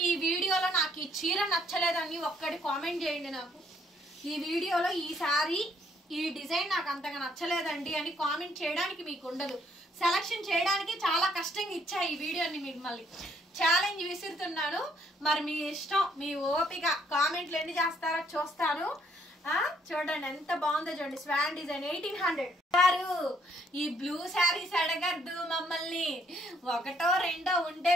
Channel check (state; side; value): normal; both; correlation 0.68